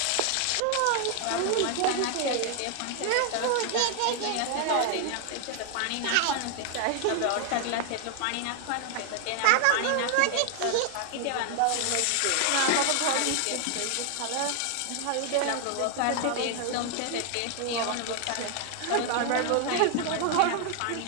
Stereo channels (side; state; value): both; different; correlation 0.00